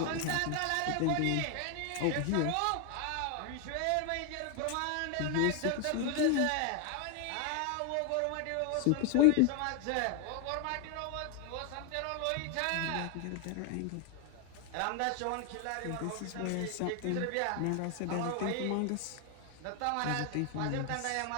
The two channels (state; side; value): different; both; correlation 0.01